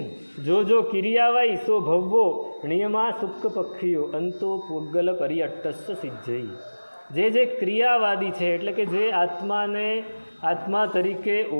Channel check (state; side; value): inverted; both; correlation -1.00